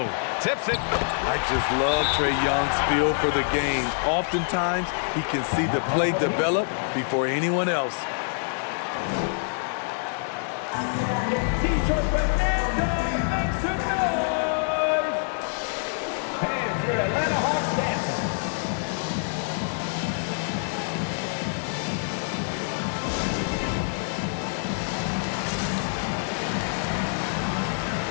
tips it. I just love Trae Young's feel for the game. Oftentimes, he can see the play develop before anyone else. T-shirt Fernando makes some noise. Fans, your Atlanta Hawks dancing.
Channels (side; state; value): right; silent; digital silence